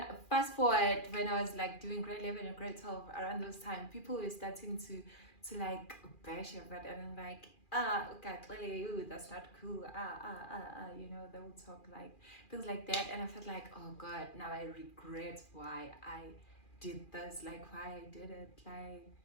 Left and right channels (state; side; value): late; right; 2.4 ms